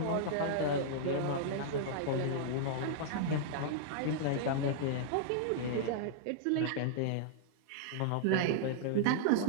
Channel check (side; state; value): both; different; correlation -0.02